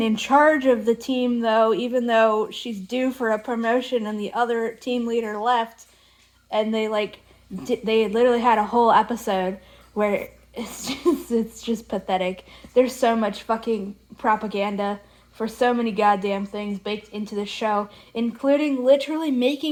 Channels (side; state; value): both; identical; correlation 1.00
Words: in charge of the team, though, even though she's due for a promotion and the other team leader left. And they literally had a whole episode where it's just pathetic. There's so much fucking propaganda for so many goddamn things baked into the show, including literally